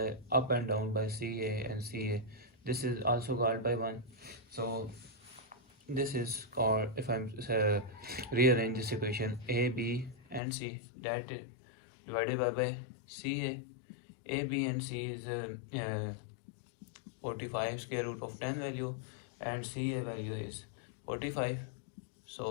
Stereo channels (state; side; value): drops out; right; at 10.4 s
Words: up and down by CA and CA, this is also called by 1. So this is called, if I'm rearrange this equation, A, B and C, that is divided by CA. A, B and C is 45 square root of 10 value, and CA value is 45.